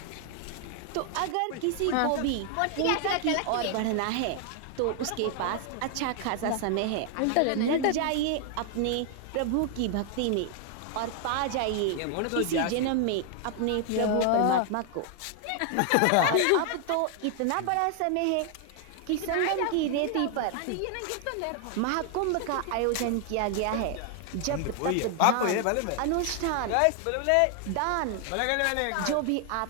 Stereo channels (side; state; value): both; different; correlation 0.00